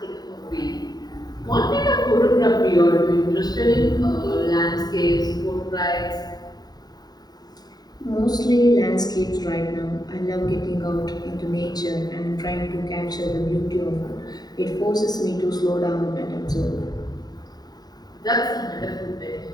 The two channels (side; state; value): right; late; 0.19 ms